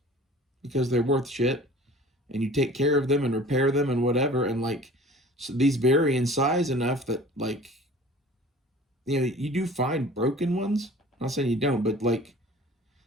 because they're worth shit, and you take care of them and repair them and whatever. And like, so these vary in size enough that like, you know, you do find broken ones. I'm not saying you don't, but like,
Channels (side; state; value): both; normal; correlation 0.45